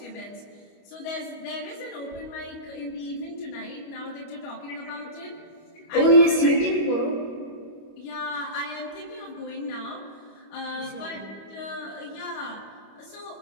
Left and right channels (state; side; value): late; right; 25 ms